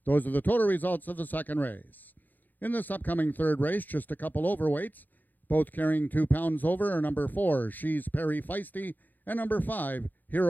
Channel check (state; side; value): late; right; 0.085 ms